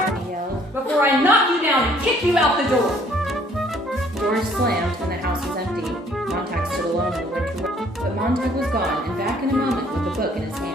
yelled. Before I knock you down and kick you out the door. Doors slammed and the house was empty. Montag stood alone in the winter weather. But Montag was gone and back in a moment with the book in his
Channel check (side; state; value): both; normal; correlation 0.60